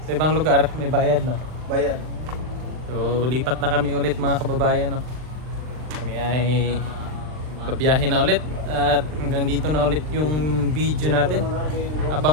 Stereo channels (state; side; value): late; left; 39 ms